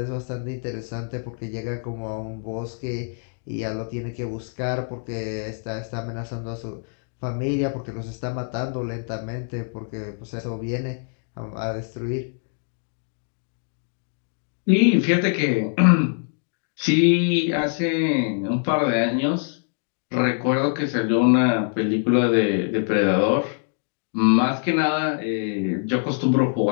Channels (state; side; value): silent; right; 61 dB below the other